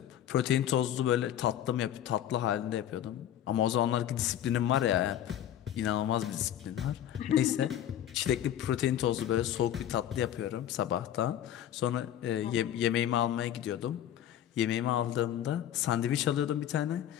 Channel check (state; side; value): quieter; right; 11.0 dB